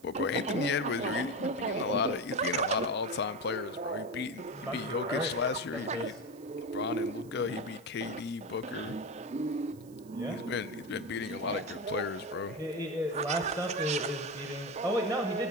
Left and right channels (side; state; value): right; noise; hiss, 25 dB below the sound